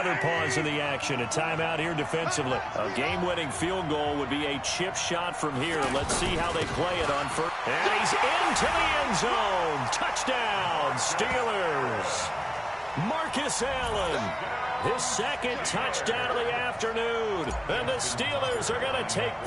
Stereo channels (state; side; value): identical; both; correlation 1.00